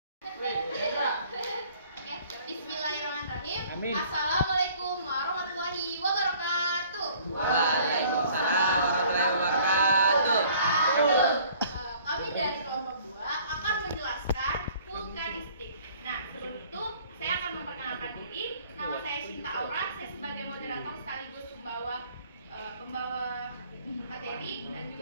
Oke, bismillahirrahmanirrahim. Amin. Assalamualaikum warahmatullahi wabarakatuh. Waalaikumsalam warahmatullahi wabarakatuh. Kami dari kelompok 2 akan menjelaskan vulkanistik. Nah, sebelum itu saya akan memperkenalkan diri. Nama saya Shinta Aura. Saya sebagai moderator sekaligus pembawa materi, dan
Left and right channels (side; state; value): both; inverted; correlation -0.55